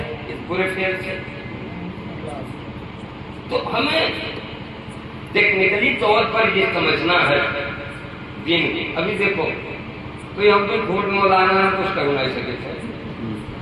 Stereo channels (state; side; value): identical; both; correlation 1.00